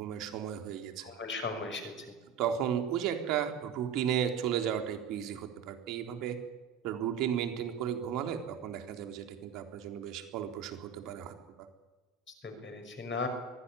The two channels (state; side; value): quieter; left; 6.9 dB